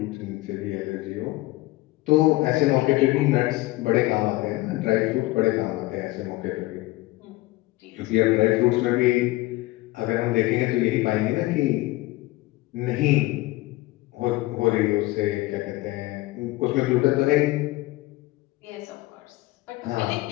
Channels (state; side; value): quieter; right; 19.3 dB